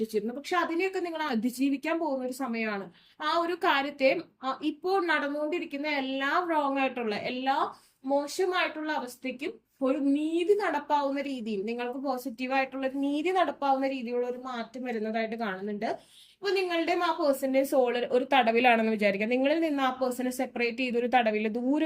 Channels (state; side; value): identical; both; correlation 1.00